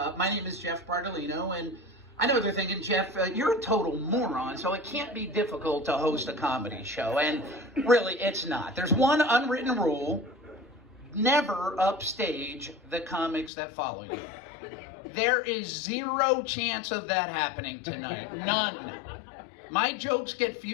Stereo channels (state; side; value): drops out; right; at 13.5 s